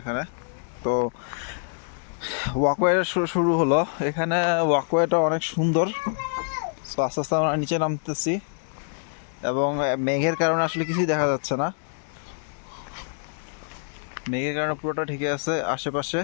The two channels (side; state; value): right; silent; digital silence